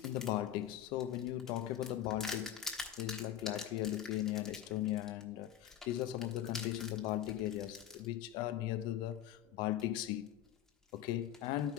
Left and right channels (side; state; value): right; quieter; 11.6 dB